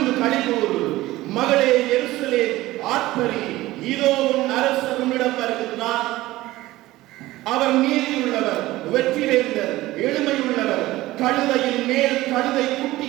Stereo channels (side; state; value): left; quieter; 17.5 dB